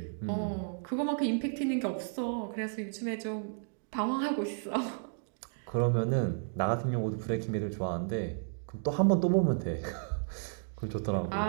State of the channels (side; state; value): left; silent; digital silence